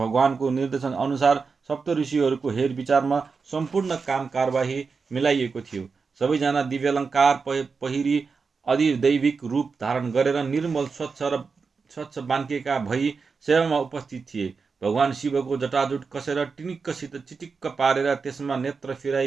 निर्देशन अनुसार सप्तऋषिहरूको हेरविचारमा सम्पूर्ण काम कारबाही मिलाइएको थियो। सबैजना दिव्यालङ्कार पहिरी अधिदैविक रूप धारण गरेर निर्मल स्वच्छ बान्केका भई सेवामा उपस्थित थिए। भगवान शिवको जटाजुट कसेर टिनिक्कसित चिटिक्क पारेर त्यसमा नेत्र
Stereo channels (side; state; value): left; quieter; 5.0 dB